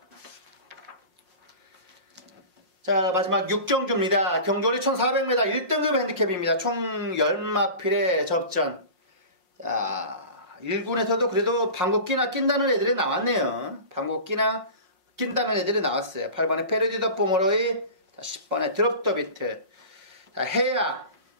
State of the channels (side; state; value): left; late; 5.6 ms